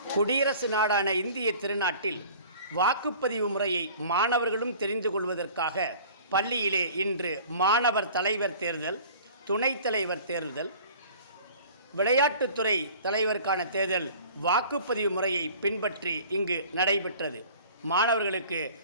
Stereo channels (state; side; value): inverted; both; correlation -0.46